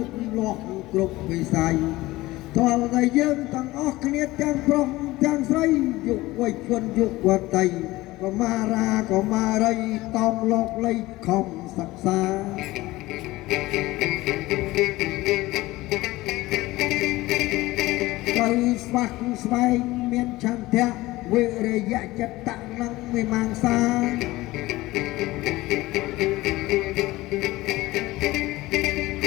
តលាស់គ្រប់វិស័យតើតែយើងទាំងអស់គ្នាទាំងប្រុសទាំងស្រីយុវជនយុវតីកុមារាកុមារីតោងលោកលៃខំសិក្សាត្រូវស្វាក់ស្វែងមានឆន្ទៈវិរិយៈចិត្តៈនិងវិមង្សា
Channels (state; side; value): quieter; right; 18.8 dB